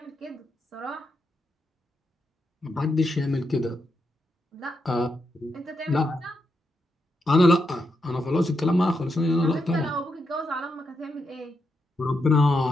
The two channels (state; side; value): normal; both; correlation 0.83